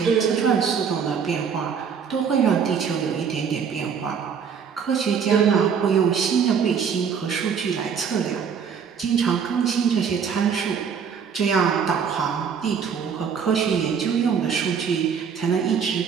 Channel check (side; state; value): left; quieter; 6.8 dB